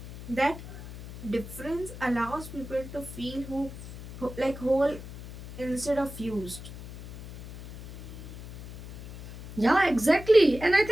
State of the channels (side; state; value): left; noise; hum, 13 dB below the sound